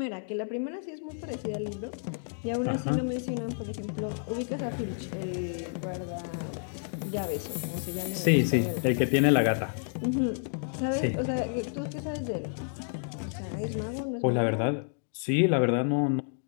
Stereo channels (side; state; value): right; silent; digital silence